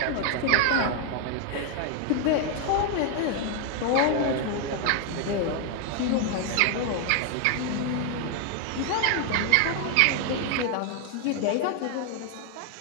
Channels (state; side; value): different; both; correlation 0.00